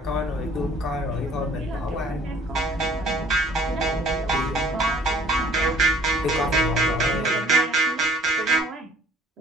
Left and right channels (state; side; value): normal; both; correlation 0.55